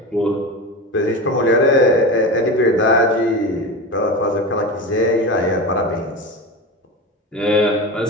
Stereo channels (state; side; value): normal; both; correlation 0.25